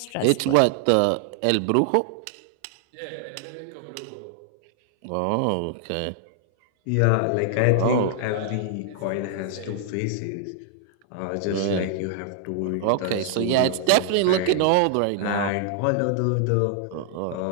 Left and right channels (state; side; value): different; both; correlation 0.00